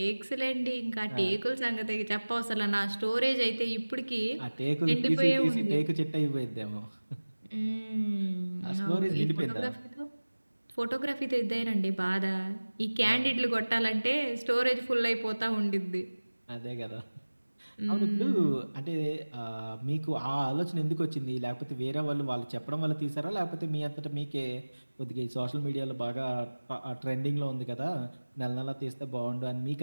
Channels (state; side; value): inverted; both; correlation -1.00